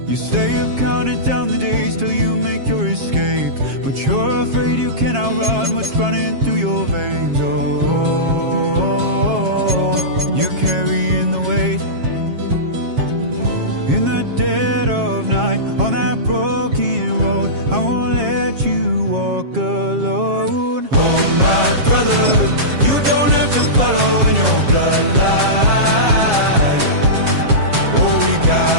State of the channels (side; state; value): left; late; 7.4 ms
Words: You say you've counted down the days till you make your escape, but you're afraid you cannot run what's running through your veins. Oh, you're carrying the weight in the dead of night on that broken road. I won't let you walk alone. Oh, my brother, you don't have to follow in your bloodline. Oh, we